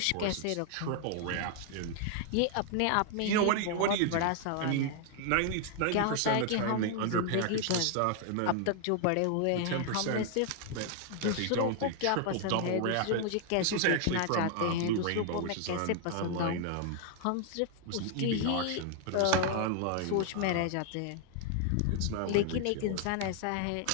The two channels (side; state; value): both; different; correlation 0.00